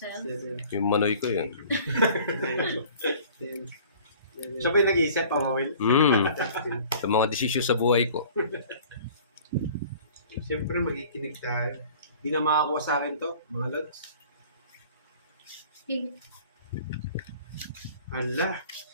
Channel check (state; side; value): inverted; both; correlation -0.48